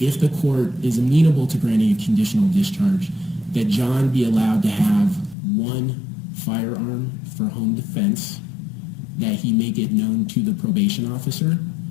the court is amenable to granting a conditional discharge, that John be allowed to have one firearm for home defense, that he make it known to the probation officer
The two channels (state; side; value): drops out; right; at 5.4 s